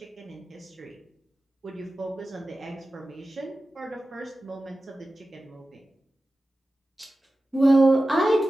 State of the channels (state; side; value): normal; both; correlation 0.95